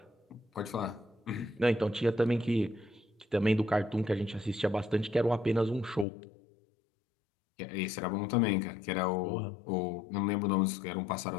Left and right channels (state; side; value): drops out; right; at 6.1 s